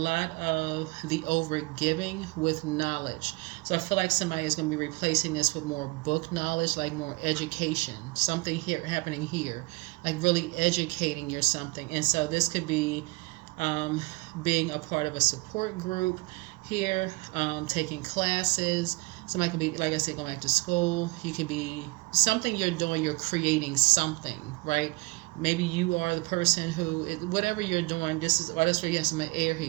of the over-giving with knowledge. So I feel like somebody is going to be replacing this with more book knowledge, like more education, something here happening here, like really educating you something. And so this could be being a part of a support group here, taking classes. Somebody could be, like I said, going back to school. You could be something you're doing, you're creating something, right? Maybe you are the person who, whatever you're doing, that's where you have some air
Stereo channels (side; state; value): left; quieter; 25.1 dB